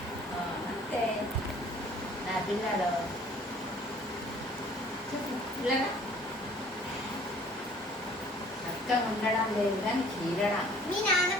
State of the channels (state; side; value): normal; both; correlation 0.54